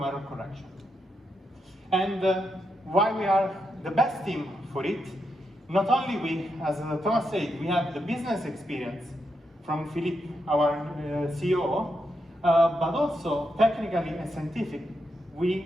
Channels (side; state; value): both; normal; correlation 0.83